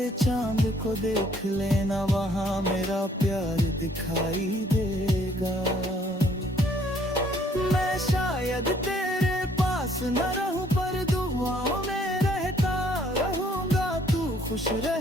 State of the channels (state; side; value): normal; both; correlation 0.63